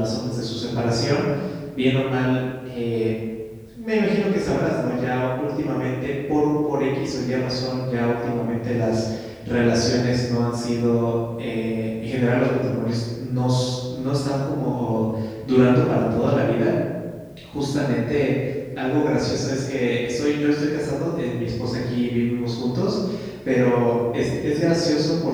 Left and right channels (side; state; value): both; identical; correlation 1.00